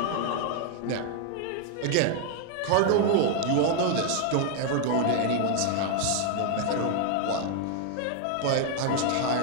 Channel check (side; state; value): both; different; correlation 0.00